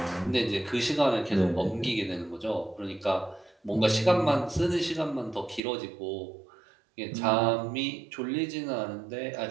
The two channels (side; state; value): left; drops out; at 5.6 s